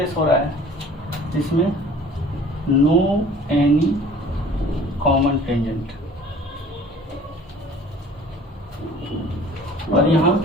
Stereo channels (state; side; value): normal; both; correlation 0.49